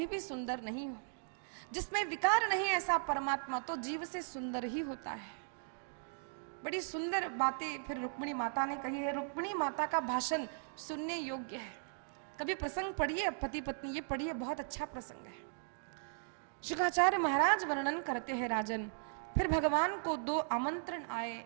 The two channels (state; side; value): silent; left; digital silence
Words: भी सुंदर नहीं हूं। जिसमें विकार नहीं ऐसा परमात्मा तो जीव से सुंदर ही होता है। बड़ी सुंदर बातें फिर रुक्मिणी माता ने कही है। रुक्मिणी माता का भाषण सुनने योग्य है। कभी प्रसंग पढ़िए पति पत्नी, ये पढ़िए, बहुत अच्छा प्रसंग है। शुकाचार्य महाराज वर्णन करते हैं राजन, फिर भगवान को 2 आमंत्रण आए।